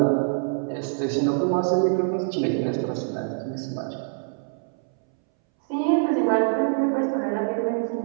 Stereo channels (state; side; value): silent; left; 62 dB below the other